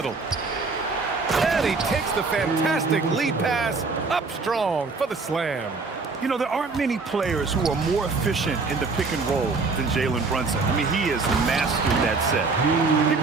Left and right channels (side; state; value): left; quieter; 4.1 dB